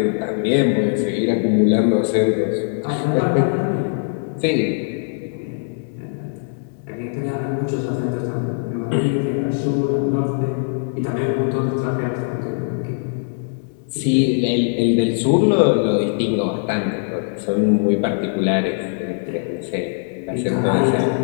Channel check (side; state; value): right; silent; digital silence